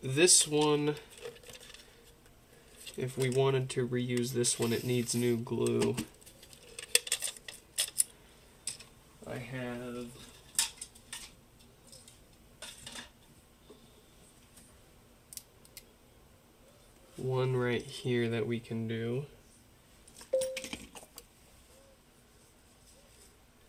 this one, if we wanted to reuse this one, it needs new glue. I have one right here that we can do.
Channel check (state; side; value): identical; both; correlation 1.00